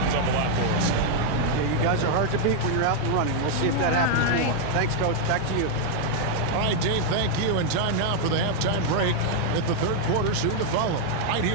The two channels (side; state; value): both; different; correlation 0.00